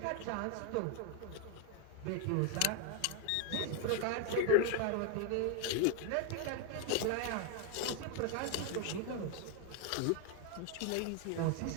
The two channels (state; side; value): different; both; correlation 0.01